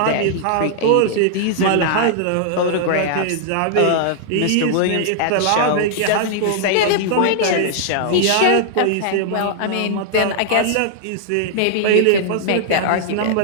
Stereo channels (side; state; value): both; different; correlation -0.01